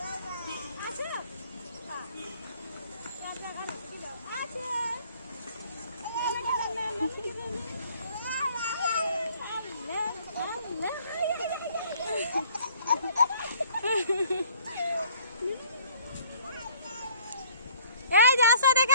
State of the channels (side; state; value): both; inverted; correlation -0.57